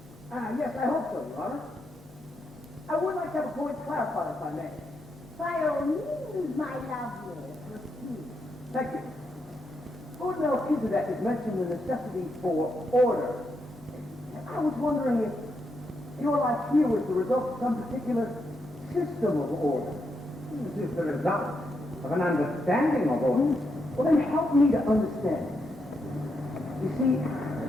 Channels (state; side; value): noise; left; hum, 26 dB below the sound